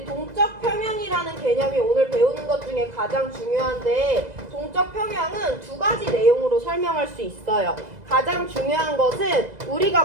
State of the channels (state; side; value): late; left; 2.0 ms